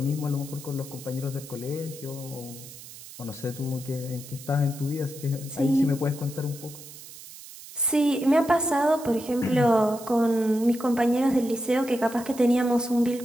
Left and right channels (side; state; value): right; noise; hiss, 16 dB below the sound